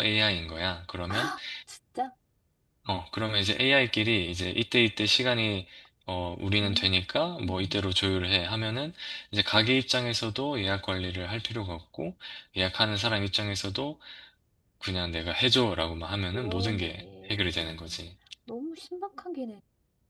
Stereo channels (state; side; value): identical; both; correlation 1.00